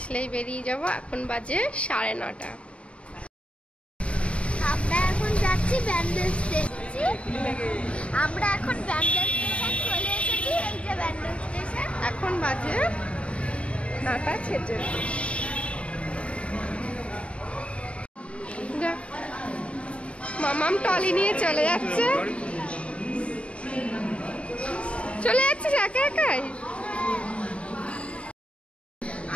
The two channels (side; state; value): right; late; 0.061 ms